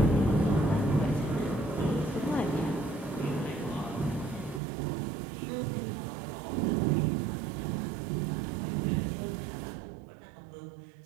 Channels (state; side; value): drops out; left; at 4.6 s